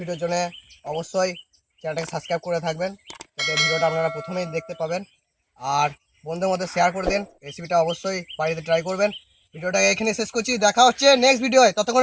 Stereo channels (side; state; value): both; identical; correlation 1.00